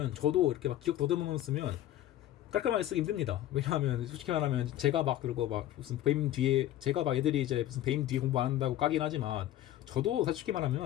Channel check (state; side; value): quieter; right; 13.3 dB